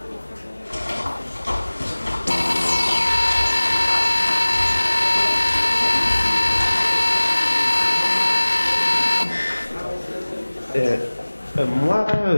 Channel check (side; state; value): both; inverted; correlation -1.00